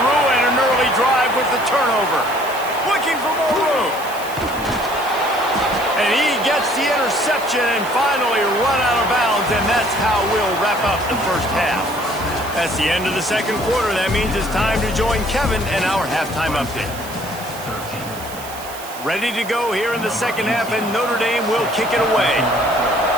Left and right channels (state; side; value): noise; right; hiss, 15 dB below the sound